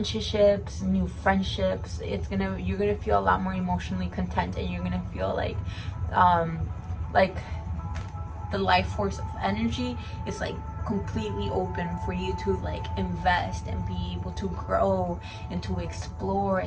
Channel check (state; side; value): identical; both; correlation 1.00